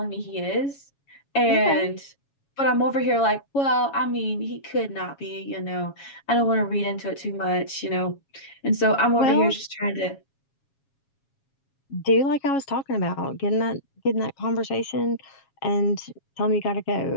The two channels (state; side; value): late; right; 7.2 ms